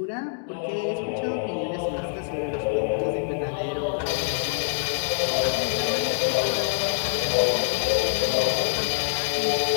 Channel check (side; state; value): right; silent; digital silence